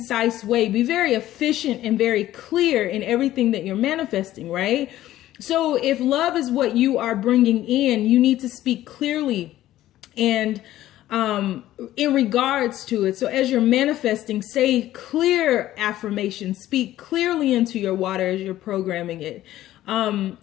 way. Be very efficient and very clear in everything that you're manifesting, right? So if love is what you are bringing in, you need to speak clearly and in regards to it. So as you're manifesting, say clear affirmations, speak clearly into your water as you're programming it.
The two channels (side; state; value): right; quieter; 14.1 dB